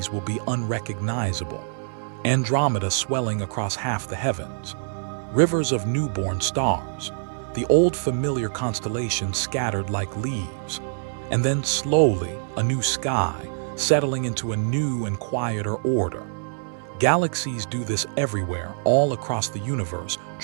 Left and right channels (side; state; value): left; silent; 62 dB below the other